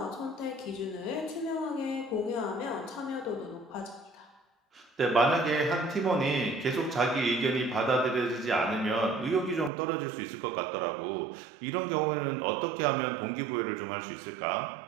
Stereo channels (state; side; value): drops out; left; at 9.7 s